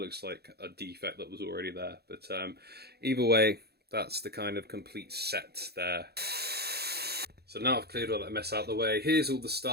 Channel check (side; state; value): left; late; 0.47 ms